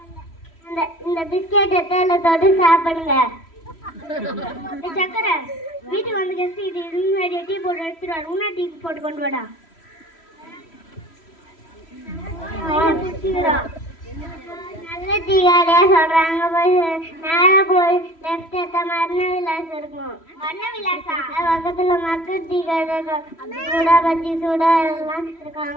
இந்த பிஸ்கெட் எத்தால தொட்டு சாப்பிடுங்க. சக்கரை, வீட்டுக்கு வந்து கெஸ்ட் இது முன்னாடி டீ போட்டு எடுத்துட்டு வாடா. உன்னா டீ போட்டு கொண்டு வாடா. நல்ல டீ கடையா சொல்றாங்க. போய் நேரா போய் லெஃப்ட் எடுத்தா மரண விலாஸ் இருக்கும். மரண விலாசா? பக்கத்துல மக்கள் டீ கடை சூடா பச்சி சூடா எல்லாம் இருக்கும்.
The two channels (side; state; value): right; late; 3.1 ms